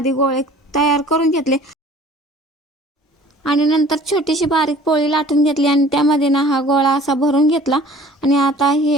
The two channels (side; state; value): both; normal; correlation 0.49